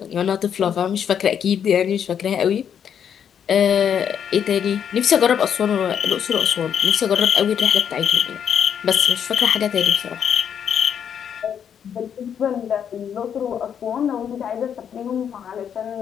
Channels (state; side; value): quieter; right; 8.3 dB